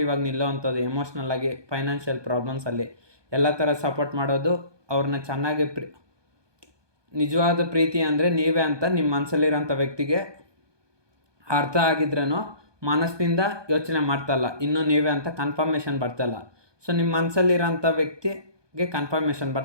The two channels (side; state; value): left; late; 1.2 ms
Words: ಆಗಿ ನಿಲ್ಲೋವಂಥದ್ದು, ಎಮೋಷ್ನಲ್ ಆಗಿ, ಫೈನಾನ್ಷಿಯಲ್ ಪ್ರಾಬ್ಲಮ್ಸಲ್ಲಿ ಎಲ್ಲ ಥರ ಸಪೋರ್ಟ್ ಮಾಡೋದು, ಅವ್ರನ್ನ ಚೆನ್ನಾಗಿ ನಿಜವಾದ ಪ್ರೀತಿ ಅಂದರೆ ನೀವೇ ಅಂತ ನಿಮ್ಮ ಮನಸ್ಸಲ್ಲಿರೋಂಥ ವ್ಯಕ್ತಿಗೆ ಅರ್ಥ ಆಗಿದ್ರೂ ಮನಸ್ಸಿನಿಂದ ಯೋಚನೆ ಮಾಡ್ತಲ್ಲ, ಇನ್ನೂ ನೀವೇ ಅಂತ ಕನ್ಫರ್ಮೇಷನ್ ಬರ್ತಲ್ಲ. ಸೊ ನಿಮ್ಮ ಮನಸ್ಸಲ್ಲಿರೋಂಥ ವ್ಯಕ್ತಿಗೆ ಕನ್ಫರ್ಮೇಷನ್